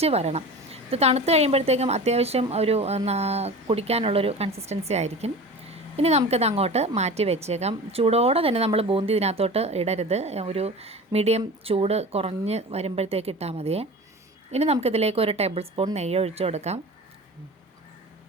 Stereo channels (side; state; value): both; normal; correlation 0.35